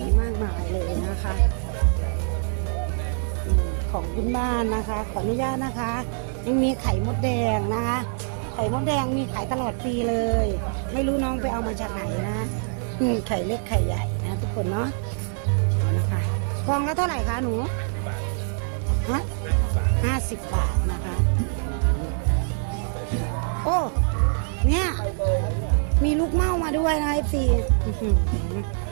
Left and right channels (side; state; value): left; silent; 62 dB below the other